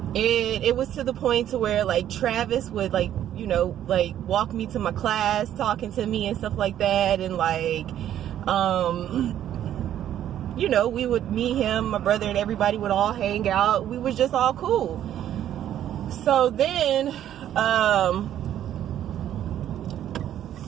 It was to the point to where, like, Travis would, like, you know, like, walk me to my class, talking to me and stuff like that, and like, you know, me, him, my brother, and everybody would all hang out. We was just all cool. So then,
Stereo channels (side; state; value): left; quieter; 11.2 dB